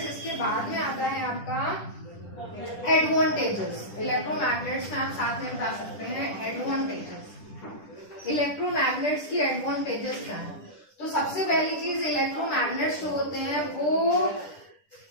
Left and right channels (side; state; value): right; late; 10 ms